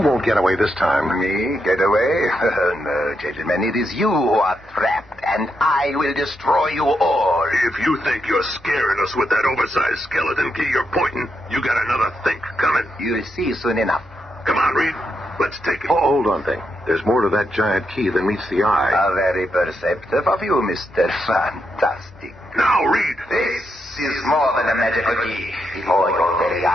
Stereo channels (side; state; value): both; normal; correlation 0.82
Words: get away this time. Me? Get away? No, gentlemen, it is you who are trapped, and I will destroy you all. If you think you're scaring us with that oversized skeleton key you're pointing, you got another think coming. You'll see soon enough. Come on, Reed. Let's take it. Oh, hold on, Thing. There's more to that giant key than meets the eye. How very perceptive of you, Mr. Fantastic. Now, Reed. This is more than a magical key. Before your very